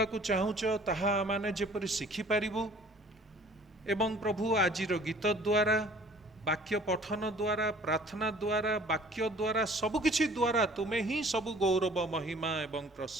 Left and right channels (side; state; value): both; normal; correlation 0.52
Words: को चाहुच ताहा आमाने जेपरि शिखि परिबु एवं प्रभु आजिर गीत द्वारा, वाक्य पठन द्वारा, प्रार्थना द्वारा, वाक्य द्वारा, सबकिछि द्वारा तुमे ही सब गौरव महिमा एवं